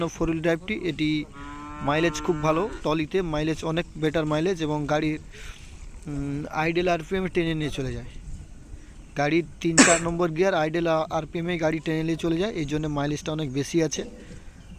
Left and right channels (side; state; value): both; identical; correlation 1.00